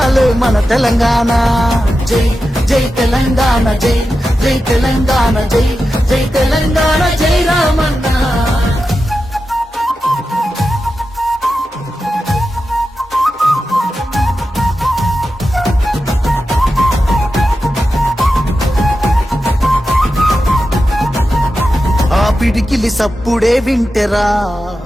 మన తెలంగాణ. జై జై తెలంగాణ, జై జై తెలంగాణ, జై జై తెలంగాణ, జై రామన్న. పిడికిలి సప్పుడే వింటెరా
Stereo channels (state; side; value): normal; both; correlation 0.91